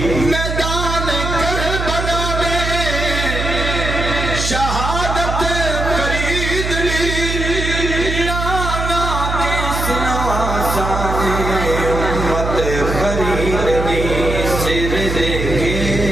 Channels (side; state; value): right; noise; hum, 3 dB below the sound